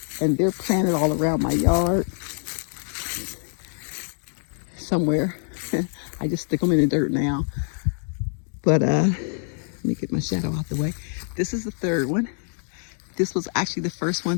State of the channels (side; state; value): right; silent; 55 dB below the other